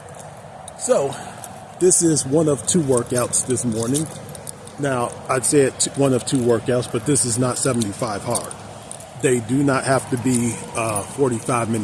So, this is one of two workouts this morning. Now, I'd say it's one of two workouts, but this is not 75 hard. They do not have to be 45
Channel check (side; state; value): both; identical; correlation 1.00